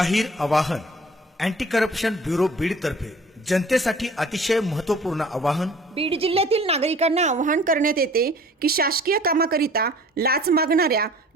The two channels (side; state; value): both; normal; correlation 0.49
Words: आवाहन. अँटी करप्शन ब्युरो बीड तर्फे जनतेसाठी अतिशय महत्त्वपूर्ण आवाहन. बीड जिल्ह्यातील नागरिकांना आवाहन करण्यात येते की शासकीय कामाकरिता लाच मागणाऱ्या